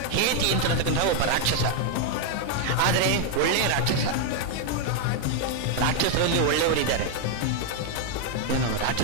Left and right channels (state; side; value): different; both; correlation 0.00